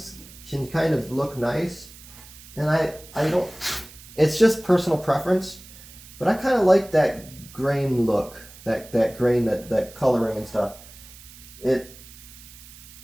can kind of look nice, and I don't, it's just personal preference, but I kind of like that grain look, that grain, that coloring and stuff. It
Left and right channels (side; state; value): right; noise; hiss, 19 dB below the sound